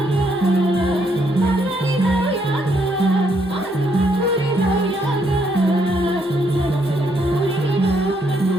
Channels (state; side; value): normal; both; correlation 0.73